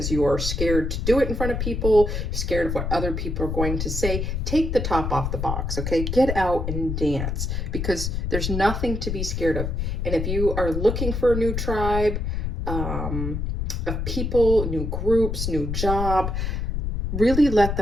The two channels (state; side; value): noise; left; rumble, 2 dB below the sound